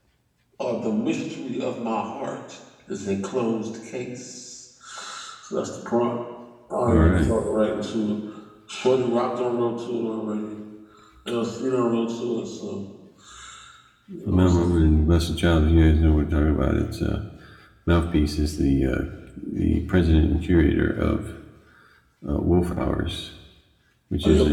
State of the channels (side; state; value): both; identical; correlation 1.00